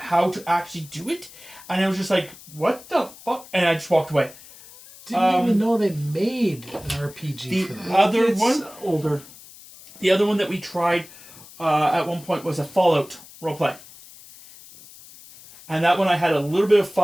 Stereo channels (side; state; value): left; noise; hiss, 20 dB below the sound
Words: to actually do it. And I was just like, "What the fuck?" And I just walked away. Didn't even know they made an RPG The for that. other It's one, older. the other one that we tried at one point was a Fallout roleplay. And that one I had a little bit of